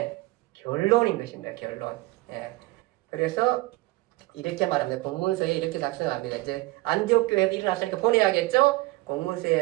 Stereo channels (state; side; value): quieter; left; 20.8 dB